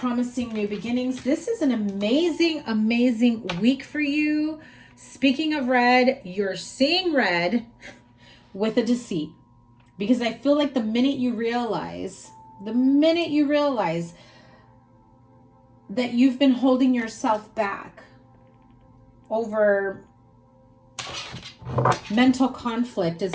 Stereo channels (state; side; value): identical; both; correlation 1.00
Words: new beginnings. This is an amazing, amazing week for you. Speaking of red, you're seeing red with a deceit. Because I feel like the minute you realize that you've been holding yourself back over mental conflict